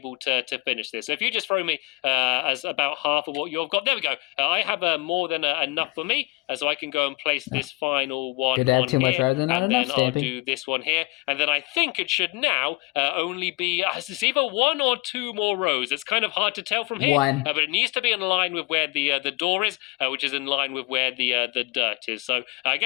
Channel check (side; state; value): right; quieter; 24.3 dB